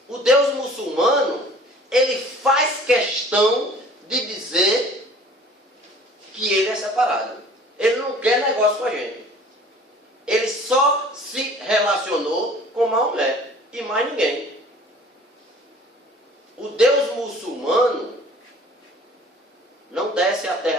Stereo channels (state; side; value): normal; both; correlation 0.49